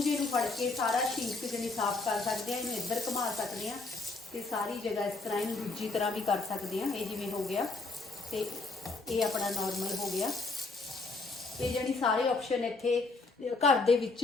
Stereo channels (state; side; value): quieter; right; 3.6 dB